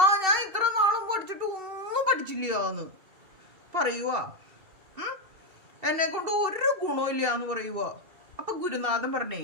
ഞാൻ ഇത്ര നാളും പഠിച്ചിട്ട് ഒന്നും പഠിച്ചില്ലാന്ന് പറയുക, എന്നെ കൊണ്ട് ഒരു ഗുണവും ഇല്ല എന്ന് പറയുക. അപ്പൊ ഗുരുനാഥൻ പറഞ്ഞേ,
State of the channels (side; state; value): left; late; 2.7 ms